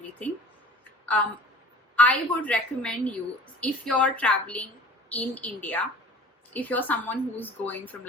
I would recommend you, if you're traveling in India, if you're someone who's going from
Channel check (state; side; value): normal; both; correlation 0.43